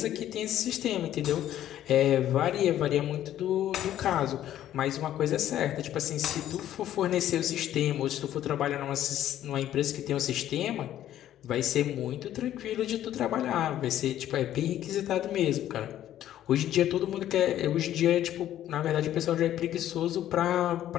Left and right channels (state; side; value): quieter; right; 12.1 dB